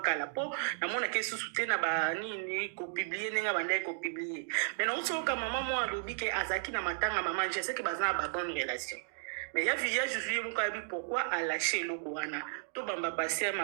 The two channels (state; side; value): silent; left; digital silence